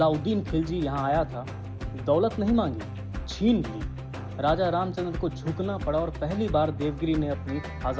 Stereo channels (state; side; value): identical; both; correlation 1.00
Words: खिलजी यहाँ आया था। दौलत नहीं मांगी, छीन ली। राजा रामचंद्र को झुकना पड़ा और पहली बार देवगिरी ने अपनी